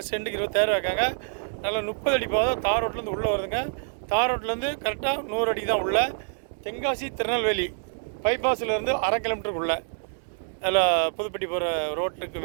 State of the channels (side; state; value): left; silent; digital silence